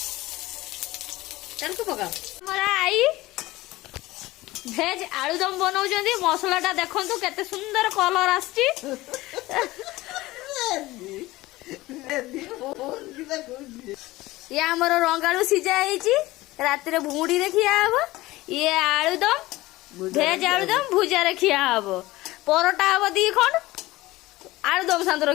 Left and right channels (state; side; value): quieter; right; 18.7 dB